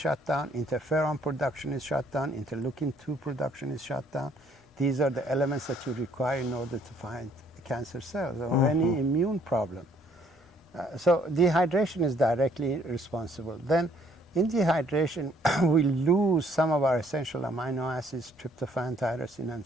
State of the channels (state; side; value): normal; both; correlation 0.64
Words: down, interferon production is shut down, interleukin-2 production is shut down. These are the elements that you require in order to find cancer cells or any immune problem. So dehydration is directly responsible. Then in dehydration, we lose some of our essential amino acids, tryptophan, tyrosine,